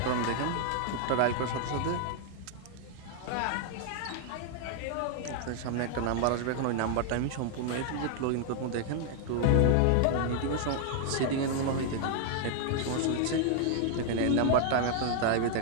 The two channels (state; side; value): different; both; correlation 0.00